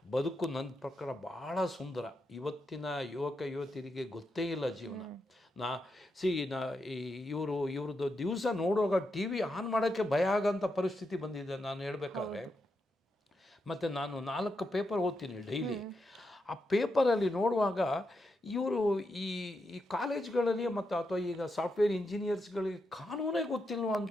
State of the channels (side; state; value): both; normal; correlation 0.84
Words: ಬದುಕು ನನ್ನ ಪ್ರಕಾರ ಭಾಳ ಸುಂದರ. ಇವತ್ತಿನ ಯುವತಿಯರಿಗೆ ಗೊತ್ತೇ ಇಲ್ಲ ಜೀವನ. ಇವ್ರದ್ದು ದಿವಸ ನೋಡುವಾಗ TV ಆನ್ ಮಾಡೋಕ್ಕೆ ಭಯ ಆಗೋಂಥ ಪರಿಸ್ಥಿತಿ ಬಂದಿದೆ ನಾನು ಹೇಳಬೇಕಾದ್ರೆ. ಮತ್ತು ನಾನು 4 ಪೇಪರ್ ಓದ್ತೀನಿ ಡೈಲಿ. ಆ ಪೇಪರಲ್ಲಿ ನೋಡುವಾಗ ಇವರು ಈ ಕಾಲೇಜ್ಗಳಲ್ಲಿ ಮತ್ತು ಅಥವಾ ಈಗ ಸಾಫ್ಟ್ವೇರ್ ಇಂಜಿನಿಯರ್ಸ್ಗಳಿಗೆ ಕಾನೂನೇ ಗೊತ್ತಿಲ್ವ